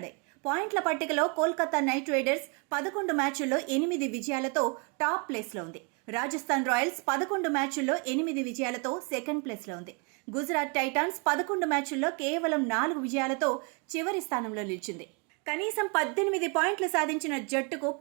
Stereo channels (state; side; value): quieter; left; 33.7 dB